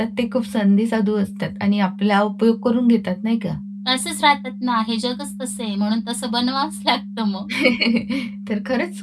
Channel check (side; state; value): both; identical; correlation 1.00